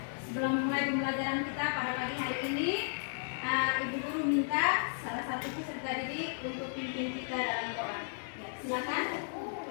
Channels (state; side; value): silent; right; digital silence